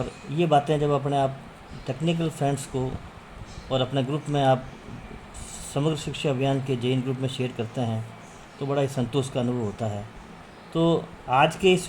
ये बातें जब अपने आप टेक्निकल फ्रेंड्स को और अपने ग्रुप में आप समग्र शिक्षा अभियान के जेईएन ग्रुप में शेयर करते हैं तो बड़ा ही संतोष का अनुभव होता है। तो आज के इस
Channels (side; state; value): both; identical; correlation 1.00